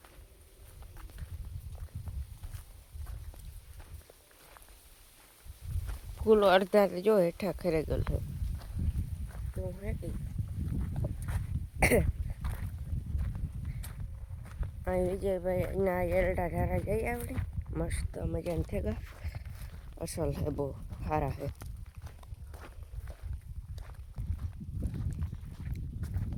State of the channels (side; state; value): both; identical; correlation 1.00